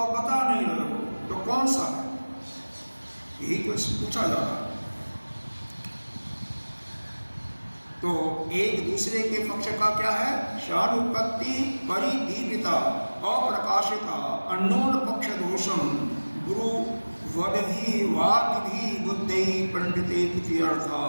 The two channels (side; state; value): both; inverted; correlation -1.00